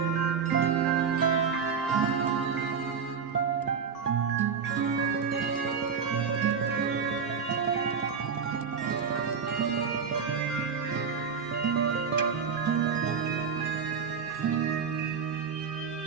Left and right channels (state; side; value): quieter; left; 6.3 dB